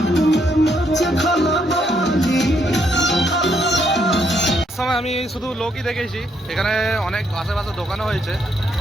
শুধু লোকই দেখেছি, এখানে অনেক আশেপাশে দোকানও হয়েছে,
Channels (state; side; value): normal; both; correlation 0.74